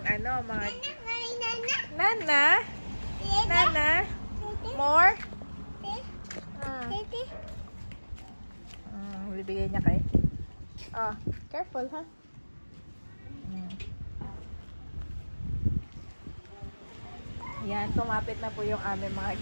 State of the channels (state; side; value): inverted; both; correlation -1.00